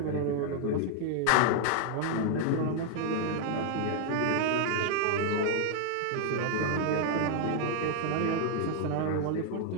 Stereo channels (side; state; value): both; different; correlation 0.00